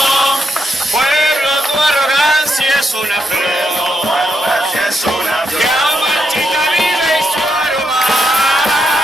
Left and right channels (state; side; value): normal; both; correlation 0.80